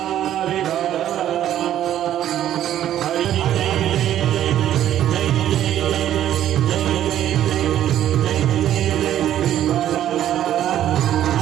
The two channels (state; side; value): quieter; left; 11.6 dB